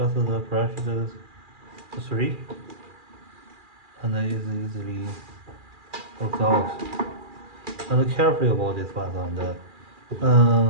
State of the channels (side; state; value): left; late; 2.4 ms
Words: press the 3 and then it easily works out. And carefully about this one,